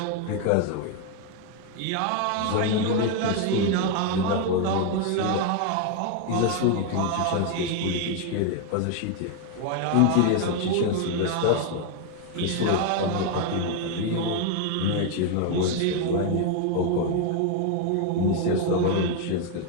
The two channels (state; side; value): different; both; correlation 0.01